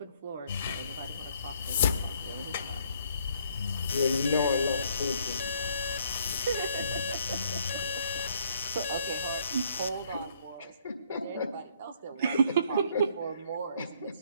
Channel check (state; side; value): inverted; both; correlation -0.65